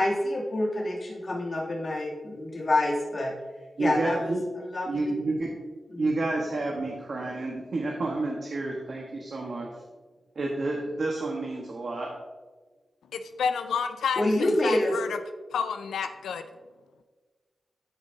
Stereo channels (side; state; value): both; normal; correlation 0.90